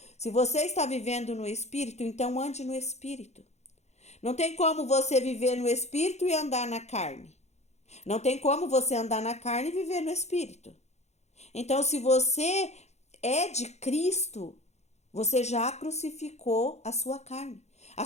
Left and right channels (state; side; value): late; right; 0.32 ms